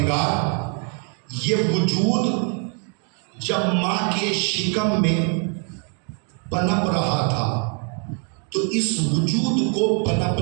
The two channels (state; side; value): quieter; left; 39.9 dB